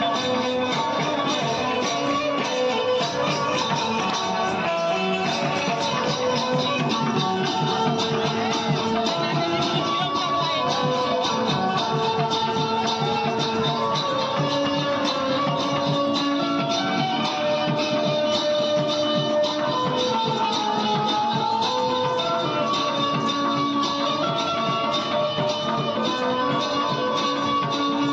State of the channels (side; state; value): both; identical; correlation 1.00